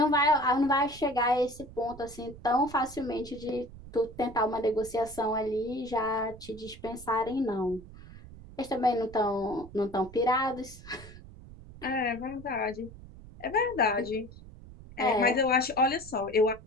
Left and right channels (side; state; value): right; noise; rumble, 17 dB below the sound